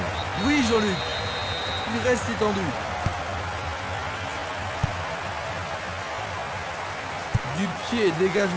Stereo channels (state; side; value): identical; both; correlation 1.00